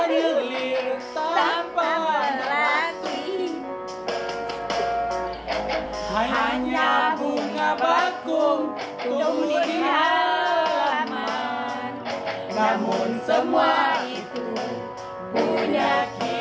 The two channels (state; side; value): identical; both; correlation 1.00